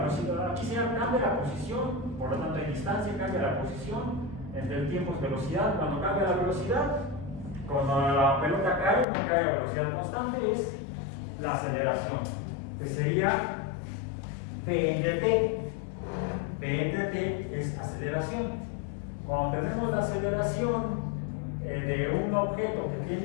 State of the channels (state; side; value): drops out; right; at 9.1 s